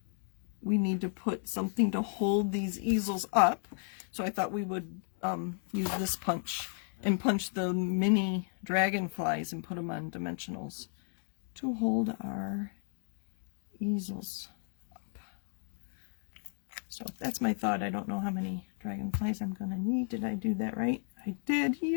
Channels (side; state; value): right; silent; 55 dB below the other